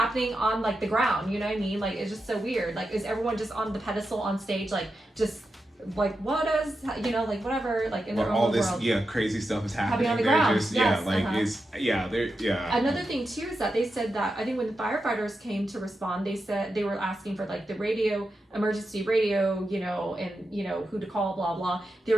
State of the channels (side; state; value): both; normal; correlation 0.89